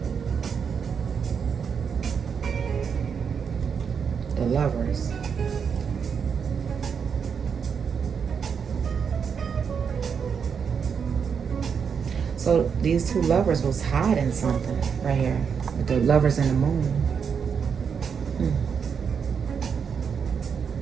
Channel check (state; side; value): quieter; left; 6.6 dB